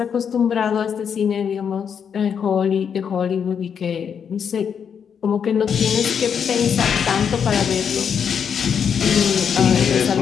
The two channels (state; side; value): quieter; right; 7.4 dB